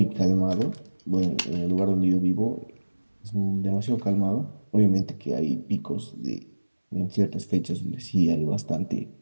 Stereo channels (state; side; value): inverted; both; correlation -1.00